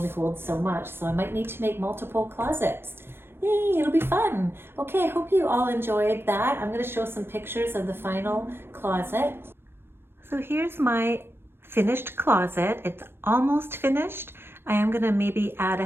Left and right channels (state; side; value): late; left; 0.11 ms